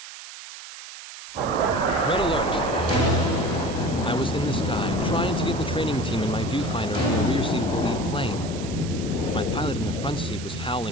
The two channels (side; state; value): right; noise; hiss, 13 dB below the sound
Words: Red alert! I was in the sky, trying to get the training team in my viewfinder from the rear seat of the lead plane. My pilot in the front seat was